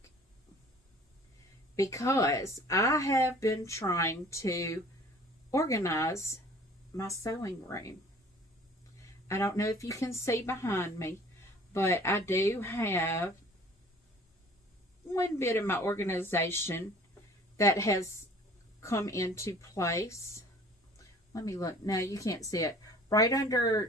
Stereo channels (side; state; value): both; normal; correlation 0.50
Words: because I have been trying to organize my sewing room. I don't know if you can see behind me, but I do have one bit of my organization that has come into place. Let me look. No, you can't see it. Right